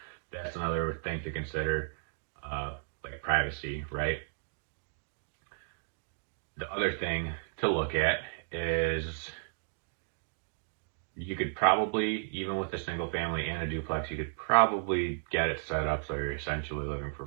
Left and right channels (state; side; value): silent; left; digital silence